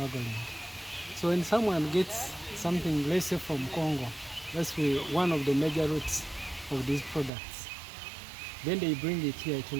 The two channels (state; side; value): drops out; left; at 7.3 s